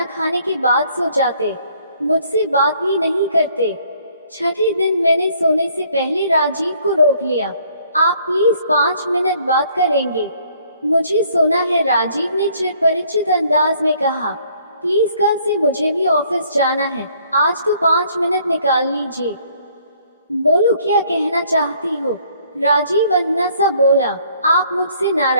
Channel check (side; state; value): both; inverted; correlation -0.62